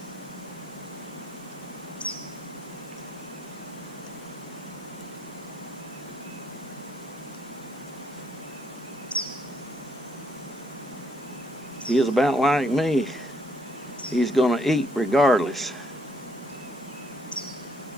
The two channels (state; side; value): noise; right; hiss, 28 dB below the sound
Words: He is about like me. He's going to eat regardless.